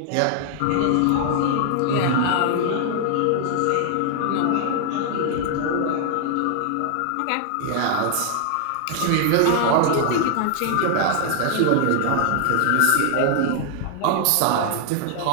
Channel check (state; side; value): different; both; correlation 0.00